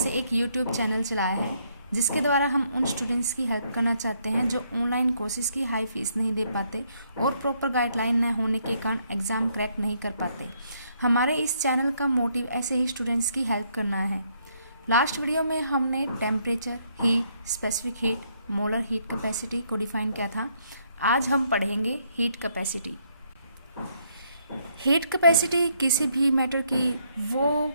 एक यूट्यूब चैनल चलाया है, जिसके द्वारा हम उन स्टूडेंट्स की हेल्प करना चाहते हैं जो ऑनलाइन कोर्सेज की हाई फीस नहीं दे पाते और प्रॉपर गाइडलाइन न होने के कारण एग्ज़ाम क्रैक नहीं कर पाते। हमारे इस चैनल का मोटिव ऐसे ही स्टूडेंट्स की हेल्प करना है। लास्ट वीडियो में हमने temperature, heat, specific heat, molar heat capacity को डिफाइन किया था। आज हम पढ़ेंगे हीट कैपेसिटी। हीट कैपेसिटी किसी भी मैटर की वो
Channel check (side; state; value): both; inverted; correlation -0.72